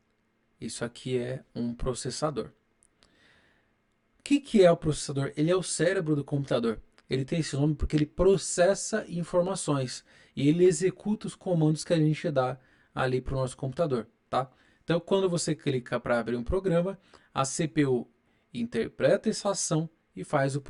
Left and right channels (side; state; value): both; identical; correlation 1.00